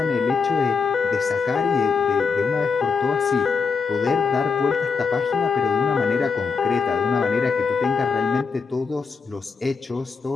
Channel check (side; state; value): right; quieter; 5.2 dB